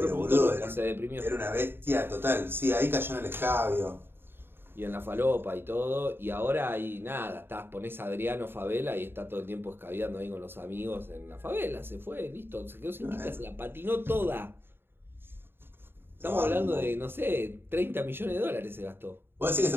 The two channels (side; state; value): left; late; 0.11 ms